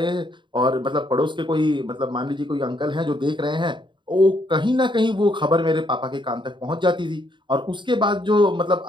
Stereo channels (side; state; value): left; late; 0.23 ms